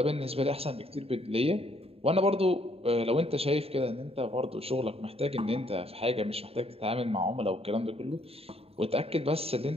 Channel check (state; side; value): late; left; 0.28 ms